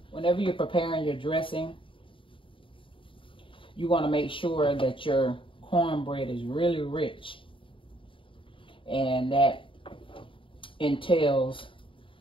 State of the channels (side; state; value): right; late; 0.25 ms